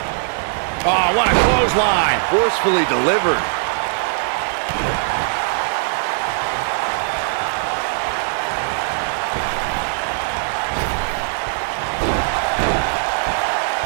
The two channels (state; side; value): silent; left; digital silence